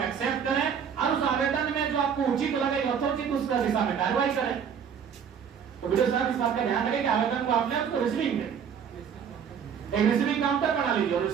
एक्सेप्ट करें और उस आवेदन में जो आपको उचित लगे यथोचित उसका दिशा में कार्रवाई करें। तो वीडियो साहब इस बात का ध्यान रखें कि आवेदन को आपने उसको रिसीविंग दें, एक रिसीविंग काउंटर बना लीजिए और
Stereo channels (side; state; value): left; quieter; 7.5 dB